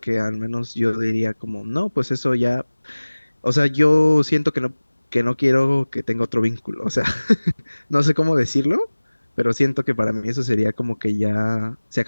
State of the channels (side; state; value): both; inverted; correlation -1.00